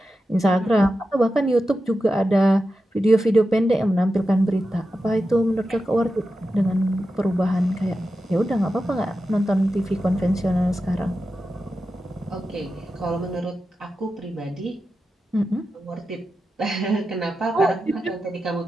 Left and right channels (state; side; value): normal; both; correlation 0.91